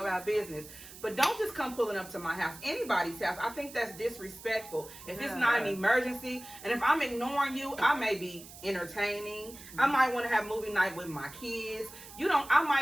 business. But don't just come pulling up to my house, anybody's house. I think that's disrespectful. If it's not an emergency, and if I'm ignoring you, I may be entertaining. I might want to have movie night with my kids. I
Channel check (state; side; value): noise; right; hiss, 16 dB below the sound